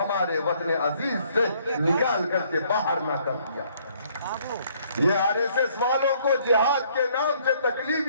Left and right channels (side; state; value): both; inverted; correlation -0.64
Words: وطن عزیز سے نکال کر کے باہر نہ کر دیا۔ یہ آر ایس ایس والوں کو جہاد کے نام سے تکلیف